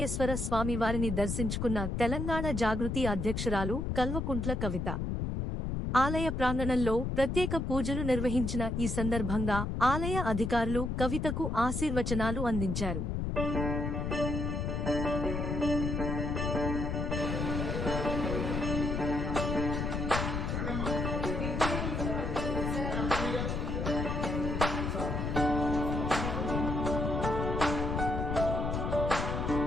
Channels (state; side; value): noise; left; rumble, 1 dB below the sound